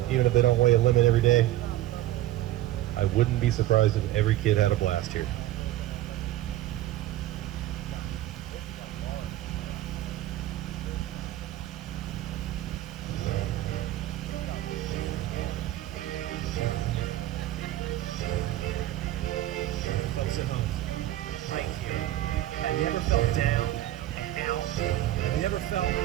even if they don't weigh a limit every day. I wouldn't be surprised if every kid had a blast here.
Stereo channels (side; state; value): left; quieter; 14.4 dB